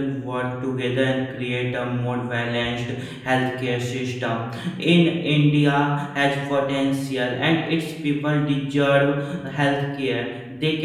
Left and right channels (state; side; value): identical; both; correlation 1.00